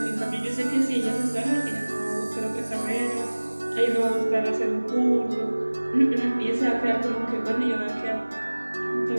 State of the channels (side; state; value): both; inverted; correlation -1.00